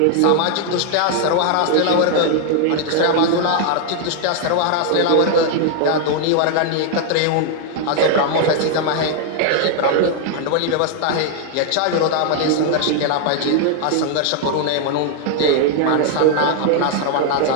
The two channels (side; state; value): both; different; correlation 0.00